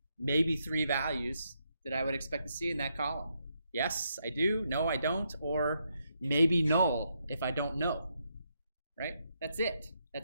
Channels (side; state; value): both; inverted; correlation -0.79